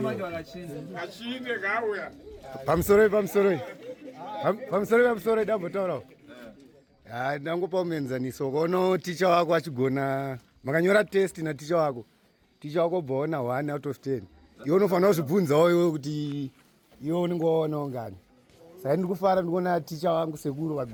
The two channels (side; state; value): both; identical; correlation 1.00